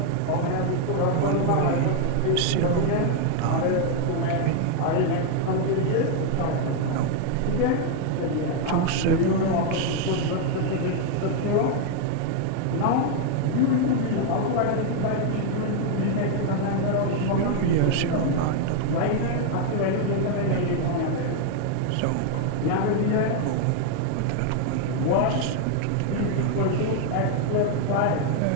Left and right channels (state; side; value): different; both; correlation 0.00